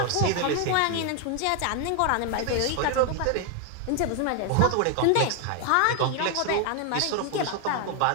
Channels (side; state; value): both; different; correlation 0.00